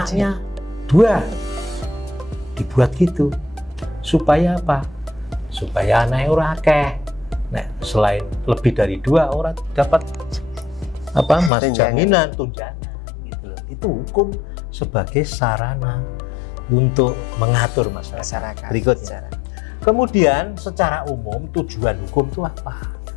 2 dibuat gitu. Supaya apa? Supaya anaknya ora akeh. Nah, selain lebih dari 2 orang dapat apa? Mas jaminan tunjangan gitu loh. Itu hukum sebagai sarana untuk mengatur masyarakat. Berikutnya. Kemudian secara umum tujuan hukum itu apa?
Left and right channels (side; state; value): right; drops out; at 11.5 s